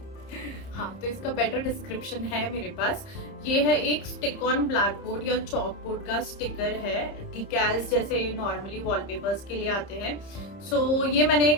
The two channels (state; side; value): late; right; 30 ms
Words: हाँ, तो इसका बेटर डिस्क्रिप्शन है मेरे पास। ये है एक स्टिक ऑन ब्लैक बोर्ड या चॉक बोर्ड का स्टिकर है, डिकैल्स जैसे नॉर्मली वॉलपेपर्स के लिए आते हैं। सो ये मैंने